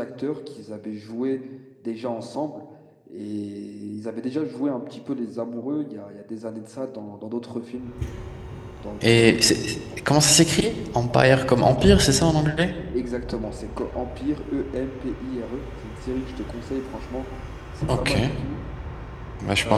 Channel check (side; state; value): both; identical; correlation 1.00